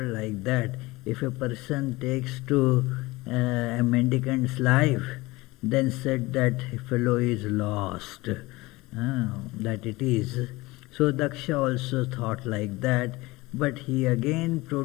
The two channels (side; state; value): right; quieter; 21.2 dB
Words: like that. If a person takes to a mendicant's life, then said that fellow is lost. That it is. So Daksha also thought like that, but he again